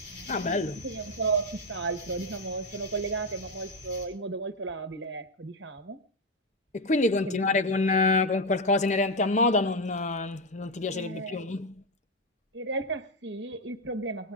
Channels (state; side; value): normal; both; correlation 0.09